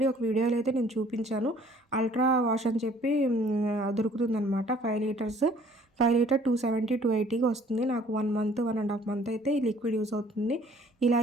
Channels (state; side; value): normal; both; correlation 0.56